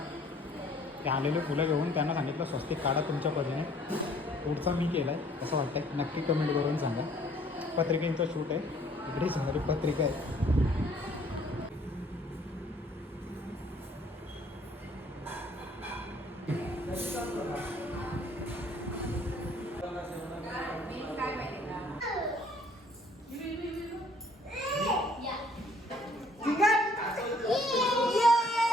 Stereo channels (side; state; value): both; normal; correlation 0.59